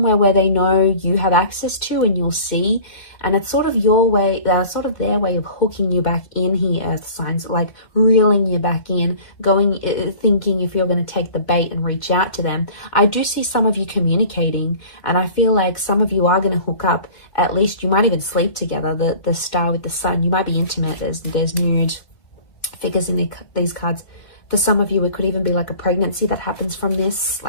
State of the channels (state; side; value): late; right; 2.1 ms